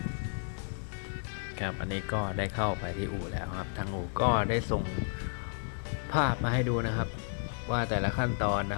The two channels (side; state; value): right; silent; 56 dB below the other